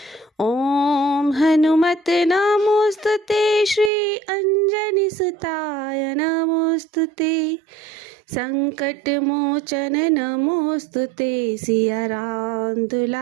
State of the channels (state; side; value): drops out; left; at 3.9 s